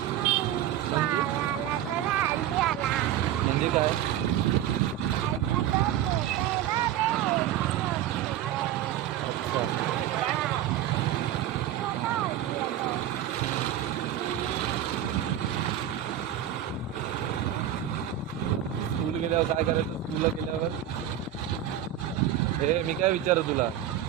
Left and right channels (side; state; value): left; quieter; 11.4 dB